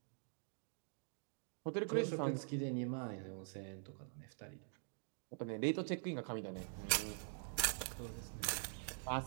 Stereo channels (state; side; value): silent; left; digital silence